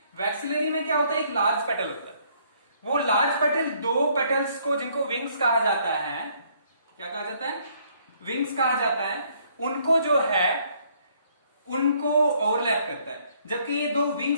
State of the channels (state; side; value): inverted; both; correlation -0.65